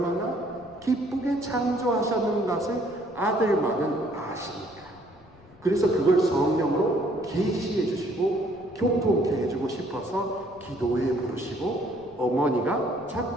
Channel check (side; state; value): left; noise; rumble, 26 dB below the sound